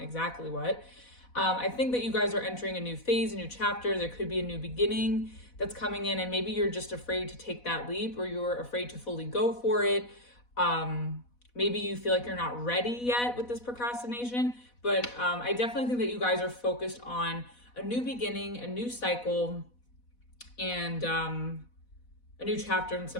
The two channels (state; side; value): late; right; 4.1 ms